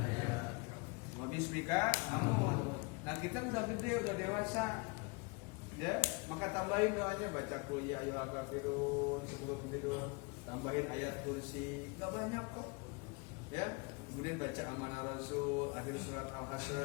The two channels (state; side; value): quieter; right; 28.6 dB